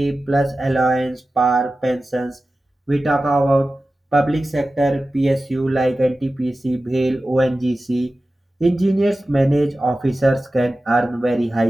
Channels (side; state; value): both; normal; correlation 0.95